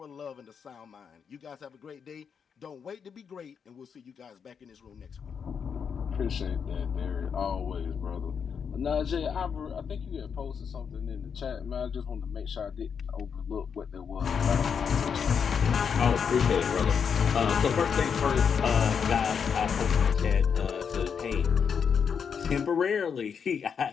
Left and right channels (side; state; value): right; quieter; 6.8 dB